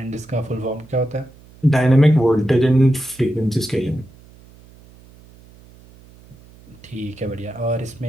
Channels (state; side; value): noise; right; hum, 24 dB below the sound